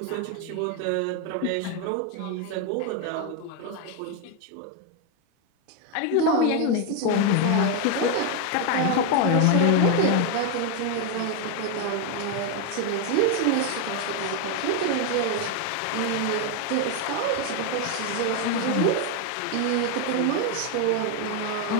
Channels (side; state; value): both; different; correlation 0.01